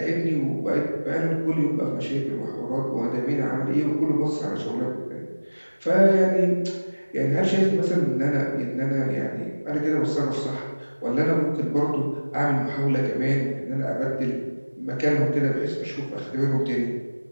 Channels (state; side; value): inverted; both; correlation -1.00